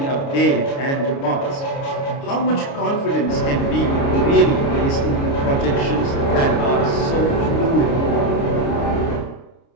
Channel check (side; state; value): right; late; 29 ms